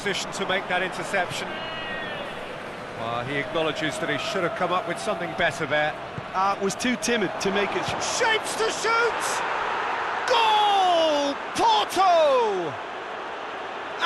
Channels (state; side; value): identical; both; correlation 1.00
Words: to make that interception. He acknowledges that he should have come up with something better there. Was too timid to make it. Shapes to shoot! Goal! Porto!